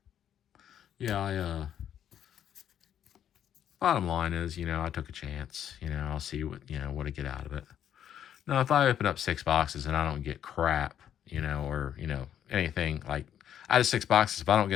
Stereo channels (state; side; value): quieter; right; 9.9 dB